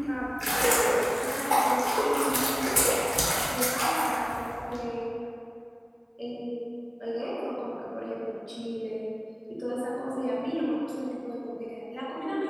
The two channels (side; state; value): both; identical; correlation 1.00